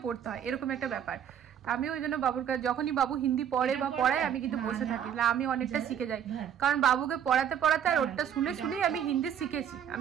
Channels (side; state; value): left; quieter; 9.0 dB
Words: পড়তে হয়, এরকম একটা ব্যাপার। আমি ওই জন্য বাবুর কাছে যখনই বাবু হিন্দি পড়ে বা পড়ায় আমি কিন্তু বসে থাকি, আমি অনেকটা শিখে যাই, কারণ বাবুকে পড়াতে পড়াতে আর ওটা শুনে শুনেই আমি হিন্দি শিখেছি।